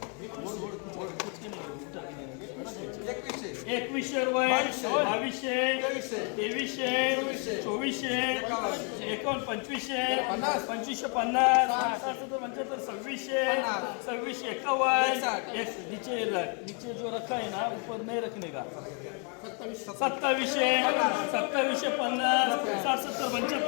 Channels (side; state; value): right; quieter; 37.4 dB